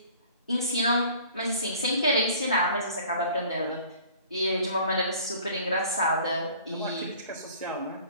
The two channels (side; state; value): both; inverted; correlation -0.49